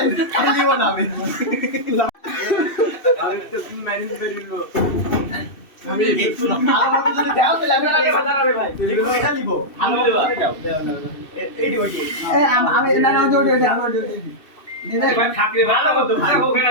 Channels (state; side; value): late; right; 2.7 ms